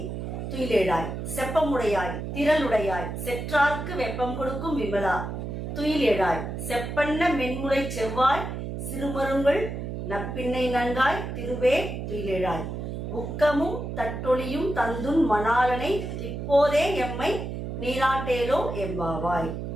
துயிலேழாய், செப்பமுடையாய் திரளுடையாய், செற்றார்க்கு வெப்பம் கொடுக்கும் விமலா துயிலேழாய், செப்பன்ன மென்முலை செவ்வாய் சிறுமருங்கள் நப்பின்னை நன்காய் திருவே துயிலேழாய், உக்கமும் தட்டொளியும் தந்துன் மணாலனை இப்போதே எம்மை நீராட்டேலோ எம்பாவாய்.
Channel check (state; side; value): noise; right; hum, 5 dB below the sound